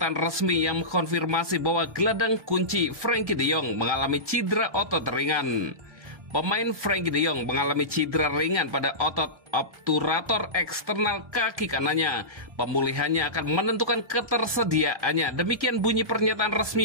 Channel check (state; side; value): late; left; 1.2 ms